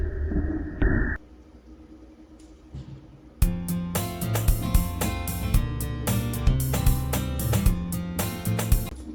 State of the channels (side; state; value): both; identical; correlation 1.00